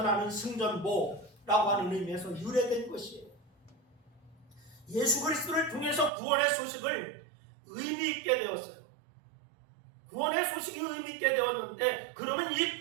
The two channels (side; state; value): left; drops out; at 6.1 s